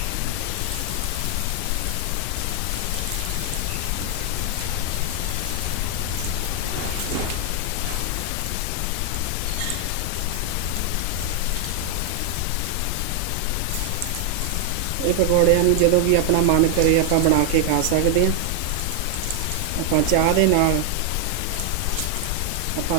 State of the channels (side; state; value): both; different; correlation 0.00